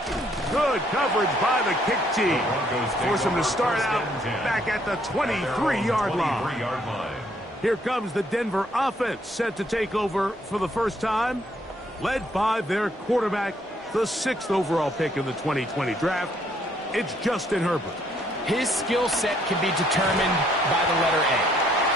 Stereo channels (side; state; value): both; normal; correlation 0.68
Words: Good coverage by the kick team. Force him to start out back at the 23-yard line. Here comes the Denver offense set to take over for the first time, led by their quarterback, the 6th overall pick in the 2020 draft. It's Justin Herbert. His skill set can be determined by the letter A.